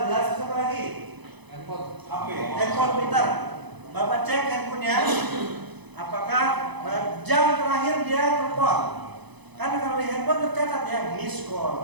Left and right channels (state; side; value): late; left; 1.0 ms